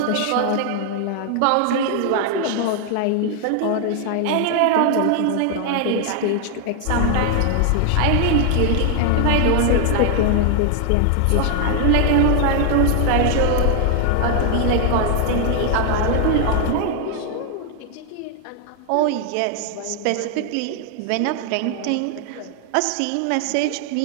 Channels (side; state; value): both; different; correlation 0.00